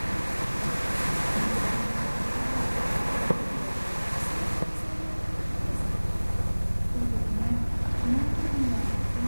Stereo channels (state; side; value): inverted; both; correlation -1.00